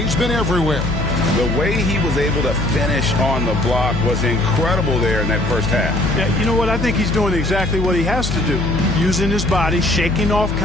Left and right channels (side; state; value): left; noise; hum, 3 dB below the sound